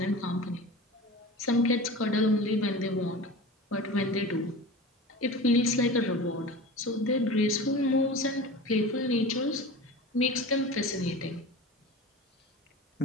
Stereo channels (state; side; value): normal; both; correlation 0.34